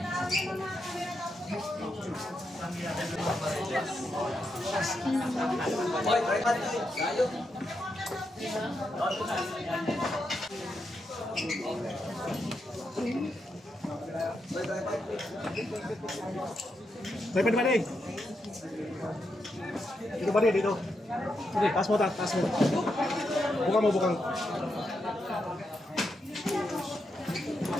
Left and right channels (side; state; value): both; normal; correlation 0.83